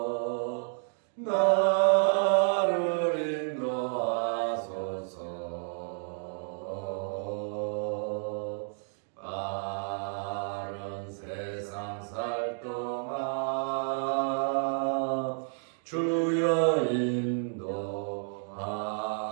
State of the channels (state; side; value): silent; left; 57 dB below the other